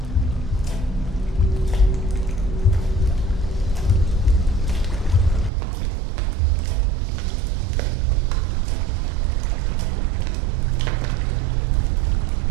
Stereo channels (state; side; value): drops out; left; at 5.5 s